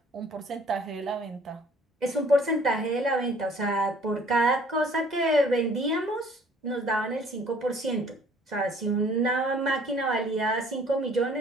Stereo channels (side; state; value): both; normal; correlation 0.56